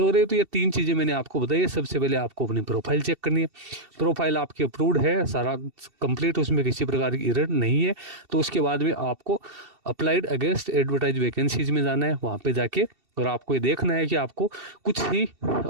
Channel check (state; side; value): late; left; 2.7 ms